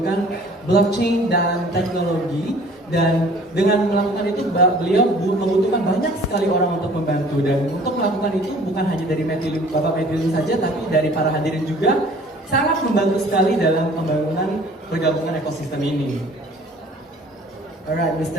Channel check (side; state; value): both; normal; correlation 0.51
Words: blockchain dan teknologi, dan dengan melakukan itu beliau membutuhkan banyak sekali orang untuk membantu, dan untuk melakukan itu bukan hanya dari Bapak Matthew saja, tapi dari para hadirin juga sangat membantu sekali dalam pembangunan pergabungan ekosistem ini. Alright,